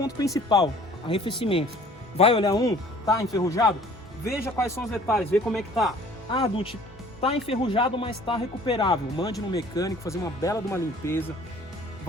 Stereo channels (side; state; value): both; normal; correlation 0.51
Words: principal, arrefecimento. Vai olhar tá enferrujado? Veja quais são os detalhes, vê como é que tá. Dutch, tá enferrujado, mas tá recuperável. Mande no mecânico, fazer uma bela de uma limpeza,